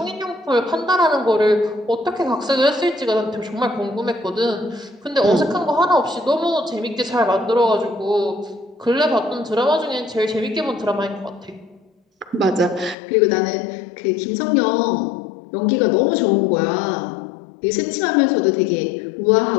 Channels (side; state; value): right; drops out; at 13.0 s